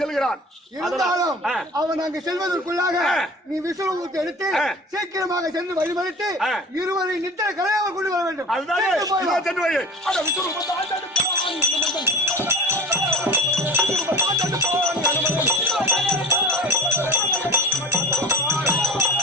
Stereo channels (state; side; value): normal; both; correlation 0.37